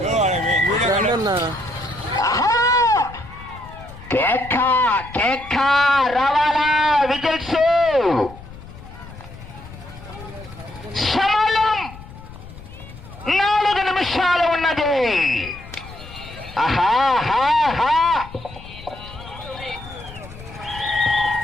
కేక కేక రావాలా విజిల్స్. సమయం 4 నిమిషాలు ఉన్నది.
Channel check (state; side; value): noise; left; rumble, 16 dB below the sound